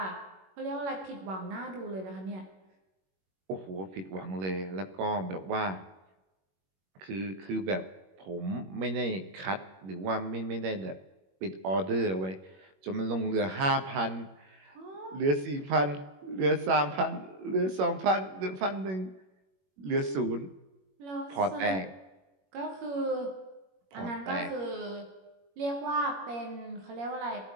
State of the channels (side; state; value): left; late; 21 ms